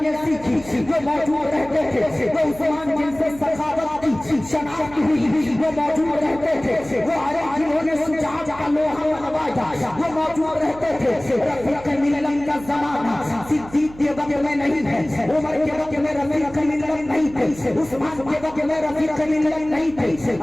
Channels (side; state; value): right; noise; hum, 18 dB below the sound